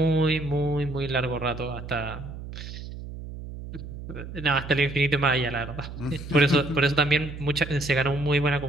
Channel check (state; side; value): noise; right; hum, 10 dB below the sound